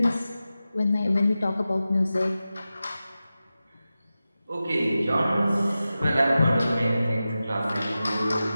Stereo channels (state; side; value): inverted; both; correlation -0.94